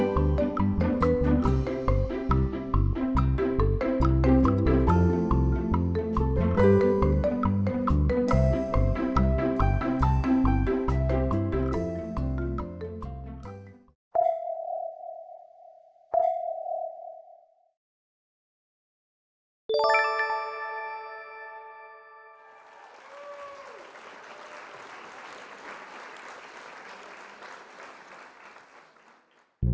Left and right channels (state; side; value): identical; both; correlation 1.00